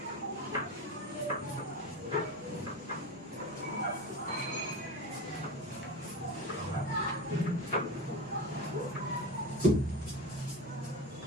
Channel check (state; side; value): normal; both; correlation 0.26